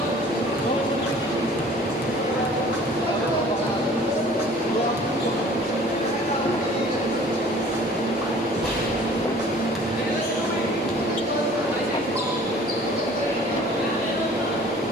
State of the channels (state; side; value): normal; both; correlation 0.50